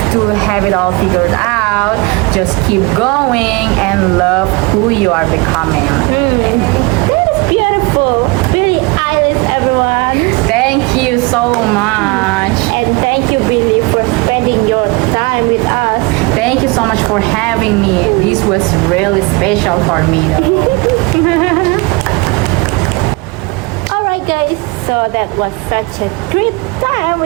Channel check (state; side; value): quieter; left; 26.0 dB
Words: to have it all figured out. Just keep going and love who you are becoming. That is beautiful. Billie Eilish, everyone. Thank you so much. And thank you, Billy, for spending your time with us. Thank you so much for having me. This was really special for me though. Alright, guys, so that was such a great time